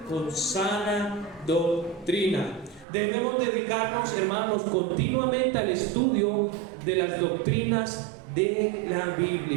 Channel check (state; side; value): drops out; left; at 2.9 s